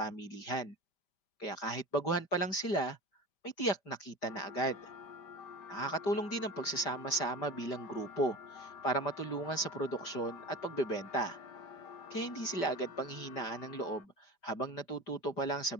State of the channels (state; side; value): late; right; 5.1 ms